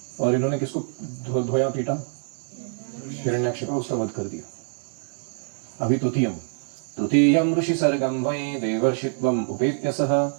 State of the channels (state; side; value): silent; left; 62 dB below the other